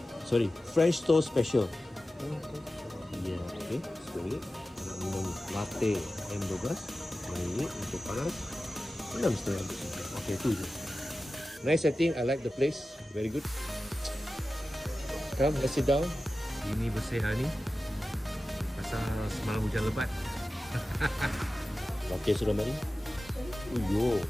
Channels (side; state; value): both; normal; correlation 0.94